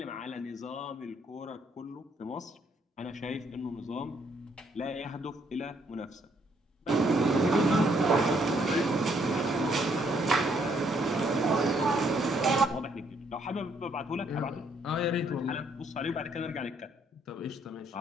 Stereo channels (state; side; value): normal; both; correlation 0.69